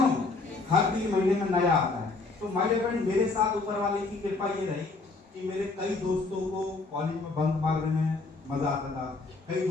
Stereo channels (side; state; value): right; quieter; 3.7 dB